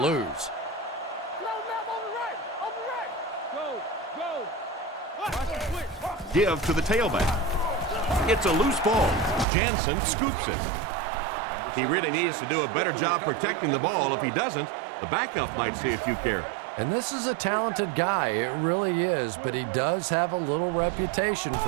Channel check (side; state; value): left; drops out; at 9.5 s